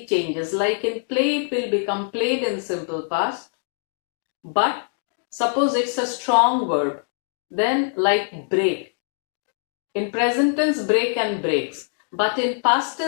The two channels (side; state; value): right; silent; digital silence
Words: changes. Like in play, it will become played in simple past. But suppose it's a strong verb, then like break. In present tense, break and breaks. But in past